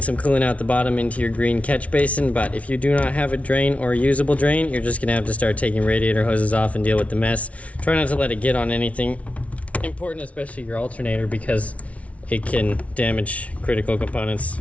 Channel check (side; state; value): right; late; 0.065 ms